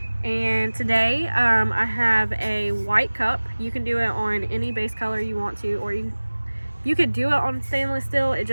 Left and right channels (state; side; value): inverted; both; correlation -1.00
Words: And today I have a white cup. You can do it on any base color you want to, or you could do it on stainless steel. It